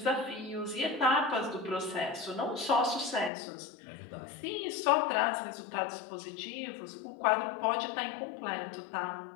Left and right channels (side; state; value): right; drops out; at 3.3 s